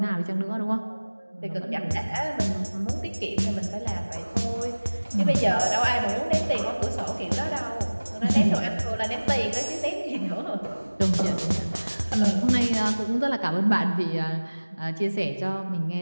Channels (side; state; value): both; inverted; correlation -1.00